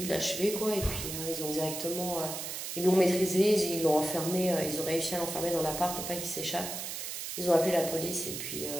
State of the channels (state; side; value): noise; right; hiss, 6 dB below the sound